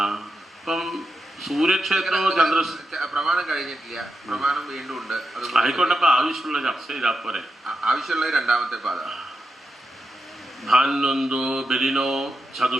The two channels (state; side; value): normal; both; correlation 0.87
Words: അപ്പം സൂര്യക്ഷേത്രവും പ്രമാണം കഴിഞ്ഞിട്ടില്ല, പ്രമാണം വീണ്ടും ഉണ്ട്. ആയിക്കോട്ടെ, അപ്പൊ ആവശ്യമുള്ള ചർച്ച ചെയ്താൽ പോരെ. ആവശ്യമുള്ള 2ാമത്തെ പാത ഭാന്വന്തോ ബലിനോ